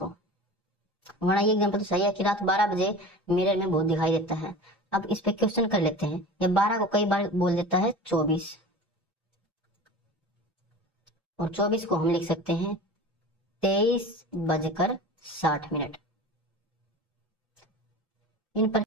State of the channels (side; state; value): both; normal; correlation 0.35